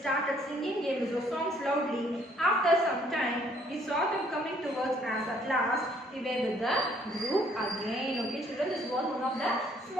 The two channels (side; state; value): both; normal; correlation 0.64